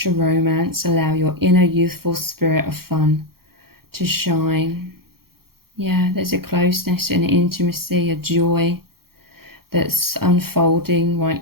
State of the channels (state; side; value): late; left; 0.94 ms